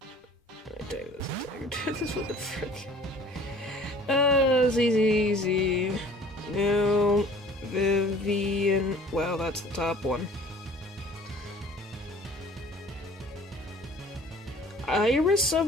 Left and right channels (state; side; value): normal; both; correlation 0.50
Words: I take this with the frick. It's easy. No, Vivian. Wow, that's the top one. Iris